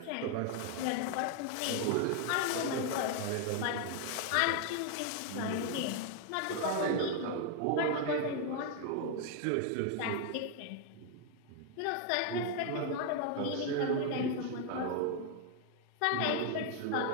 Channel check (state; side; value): different; both; correlation 0.00